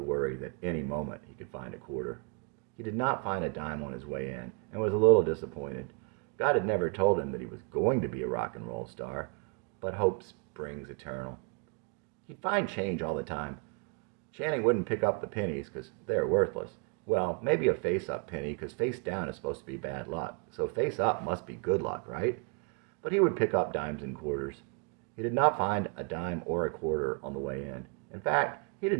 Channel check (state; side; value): quieter; left; 36.6 dB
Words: worry that any moment he could find a quarter. He did not find a dime on his way in and was a little disappointed. God had never told him that he was going to be a rock and roll star, but hope springs eternal. He'd find change all the time. Channing wouldn't pick up the pennies because they're worthless. Well, maybe a face-up penny because face down is supposed to be bad luck, so face-up must be good luck, right? But he would pick up dimes and quarters. He did not find a dime or a quarter on the way in. In fact, he